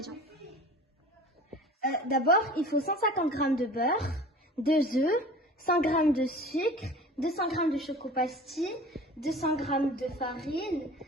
D'abord, il faut 150 g de beurre, 2 œufs, 100 g de sucre, 200 g de choco-pastille, 200 g de farine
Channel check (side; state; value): both; normal; correlation 0.41